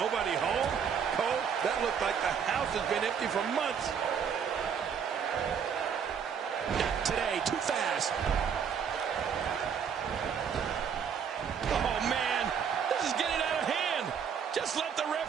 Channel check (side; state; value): left; quieter; 7.3 dB